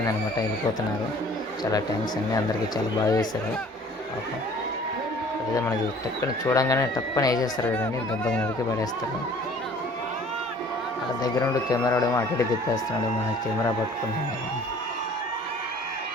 వెళ్ళిపోతున్నారు. చాలా థ్యాంక్స్ అండి, అందరికీ చాలా బాగా చేశారు. అదే మనకి టక్కన చూడంగానే టప్పని వేసేస్తారు కదండి, దెబ్బకి నరికి పడేస్తారు. ఆ దగ్గర ఉండి కెమెరా ఏమో అటు ఇటు తిప్పేస్తున్నాడు. మన కెమెరా పట్టుకుంటున్నాడు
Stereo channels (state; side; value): normal; both; correlation 0.52